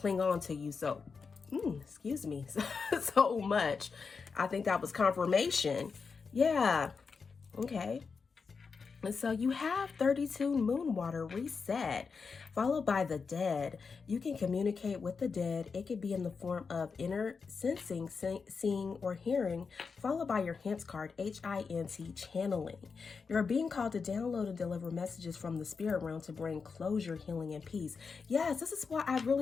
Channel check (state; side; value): quieter; right; 5.2 dB